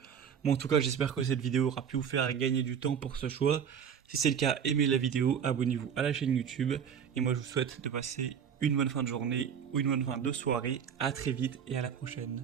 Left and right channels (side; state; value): left; quieter; 7.8 dB